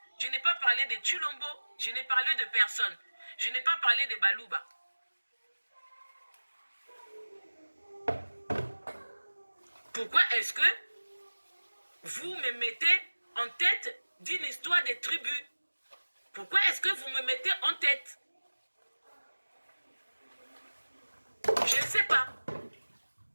je n'ai pas parlé de Tshilombo, je n'ai parlé de personne. Je n'ai pas parlé de Balouba. Pourquoi est-ce que vous me mettez en tête d'une histoire de tribus? Pourquoi est-ce que vous me mettez en tête? Je ne sais pas.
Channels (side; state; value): both; inverted; correlation -1.00